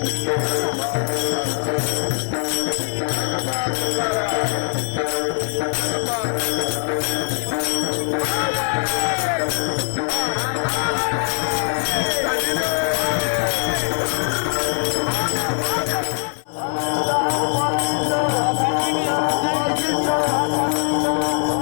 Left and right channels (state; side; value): silent; right; 58 dB below the other